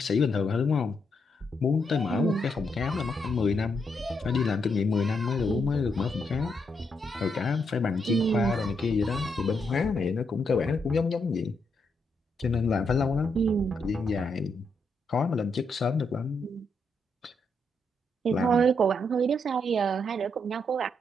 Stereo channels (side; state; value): both; normal; correlation 0.79